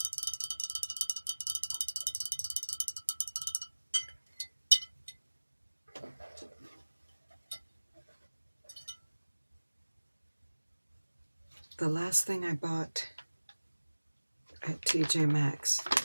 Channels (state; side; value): inverted; both; correlation -1.00